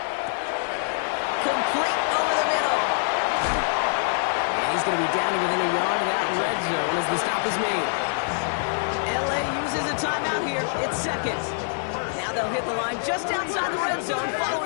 Complete over the middle. And he's going to be down to within a yard of that red zone as the stop is made. LA uses a timeout here. It's 2nd. Now they'll hit the line just outside the red zone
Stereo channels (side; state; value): right; silent; digital silence